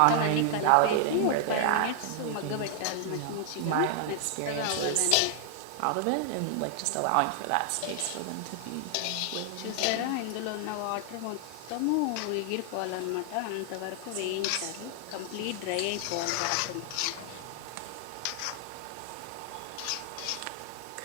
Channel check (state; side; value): different; both; correlation 0.00